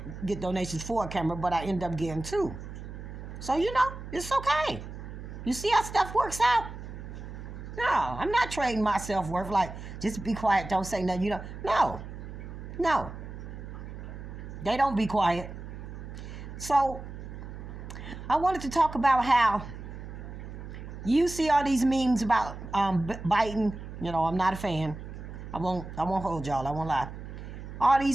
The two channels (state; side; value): noise; right; hum, 11 dB below the sound